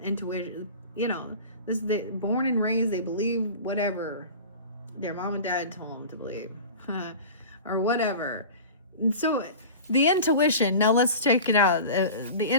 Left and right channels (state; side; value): inverted; both; correlation -0.36